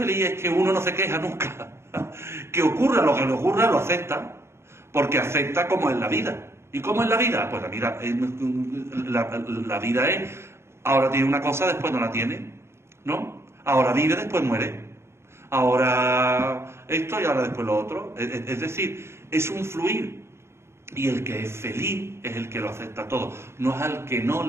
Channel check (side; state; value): left; late; 0.13 ms